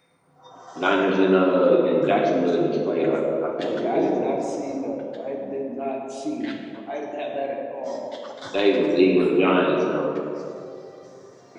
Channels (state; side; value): identical; both; correlation 1.00